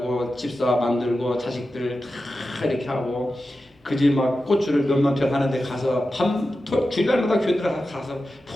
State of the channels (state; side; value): normal; both; correlation 0.92